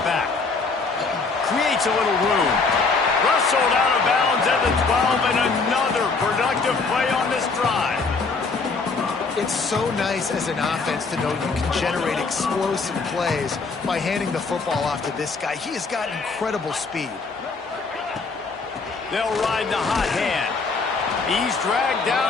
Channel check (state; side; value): quieter; right; 4.3 dB